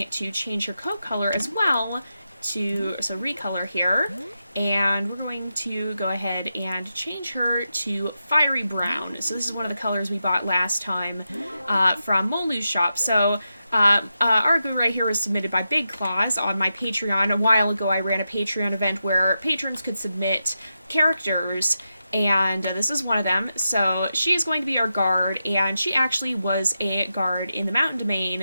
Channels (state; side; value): inverted; both; correlation -0.88